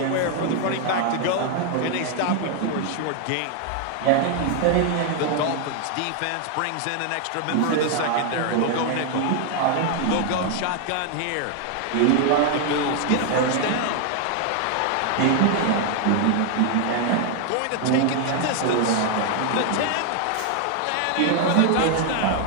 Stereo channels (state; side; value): different; both; correlation 0.00